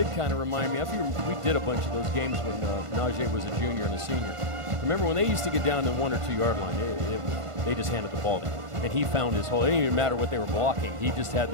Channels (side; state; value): left; late; 1.5 ms